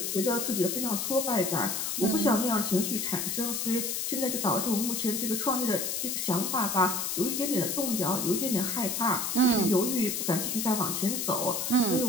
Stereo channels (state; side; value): noise; left; hiss, 1 dB below the sound